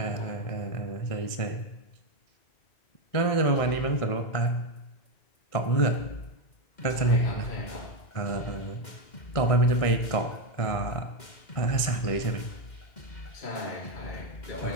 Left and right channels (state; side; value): late; right; 1.6 ms